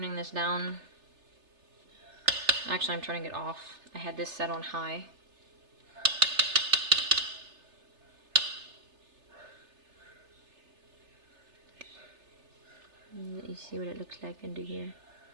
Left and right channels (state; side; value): late; left; 3.3 ms